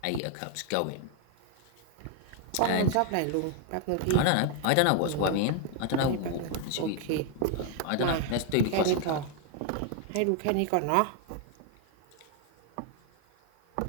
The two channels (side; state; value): both; different; correlation 0.00